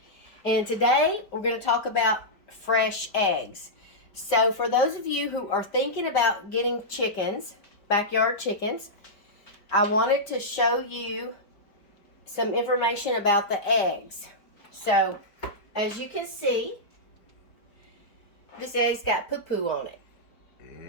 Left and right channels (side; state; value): right; late; 4.7 ms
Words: And today we're going to talk about fresh eggs. So for those of you who are thinking about getting chickens, backyard chickens, I wanted to show you some information about the eggs. So as you can see, this egg's got poo-poo on it.